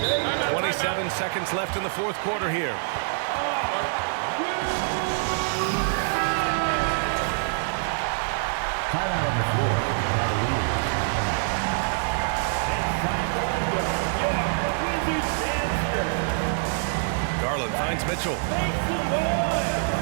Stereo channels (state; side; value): silent; left; digital silence